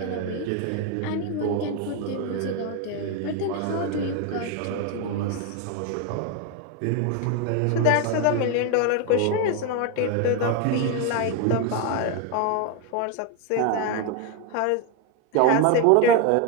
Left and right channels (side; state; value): both; different; correlation 0.02